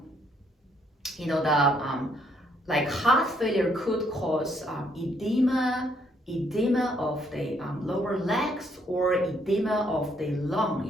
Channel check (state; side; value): normal; both; correlation 0.70